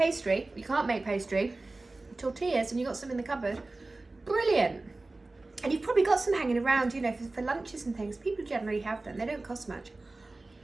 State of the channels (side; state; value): left; quieter; 3.2 dB